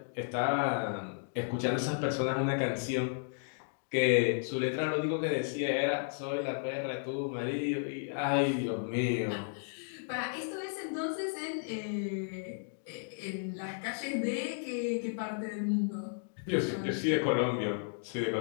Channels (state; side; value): silent; right; digital silence